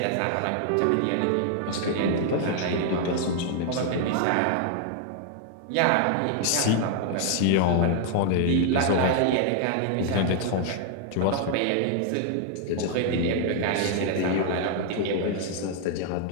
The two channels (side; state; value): both; different; correlation 0.00